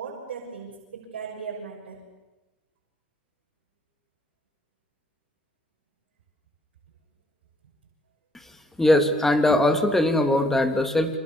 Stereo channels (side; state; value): both; normal; correlation 0.67